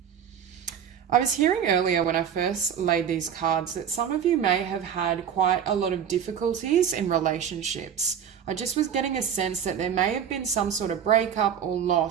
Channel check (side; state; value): left; quieter; 8.4 dB